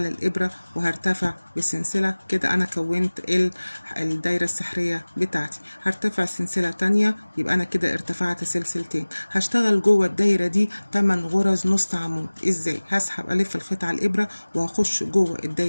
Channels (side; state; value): both; inverted; correlation -1.00